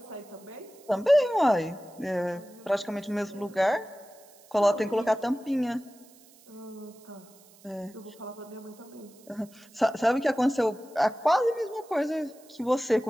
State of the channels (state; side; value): noise; right; hiss, 26 dB below the sound